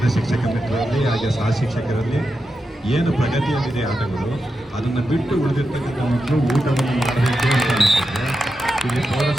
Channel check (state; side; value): normal; both; correlation 0.89